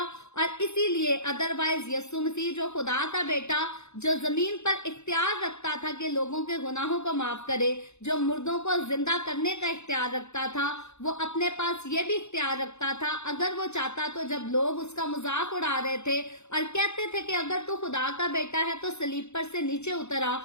اور اسی لیے ادروائز یسوع مسیح جو خدا کا بیٹا، جو زمین پر اختیار رکھتا تھا کہ لوگوں کے گناہوں کو معاف کرے، جو مردوں کو زندہ کرنے کا اختیار رکھتا تھا، وہ اپنے پاس یہ بھی اختیار رکھتا تھا اگر وہ چاہتا تو جب لوگ اس کا مذاق اڑا رہے تھے اور کہتے تھے کہ اگر تو خدا کا بیٹا ہے تو صلیب پر سے نیچے اترا،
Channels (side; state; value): right; late; 0.82 ms